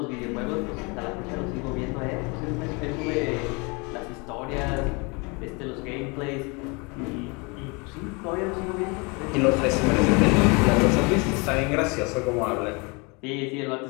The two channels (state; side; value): quieter; right; 29.7 dB